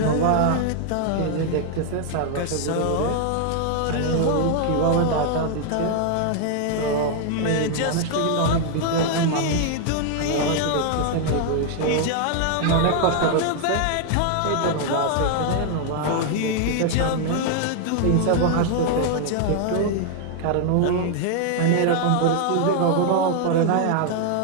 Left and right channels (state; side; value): different; both; correlation 0.00